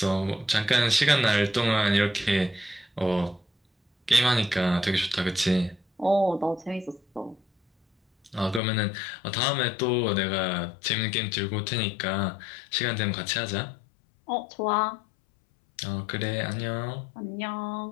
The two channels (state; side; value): drops out; right; at 8.6 s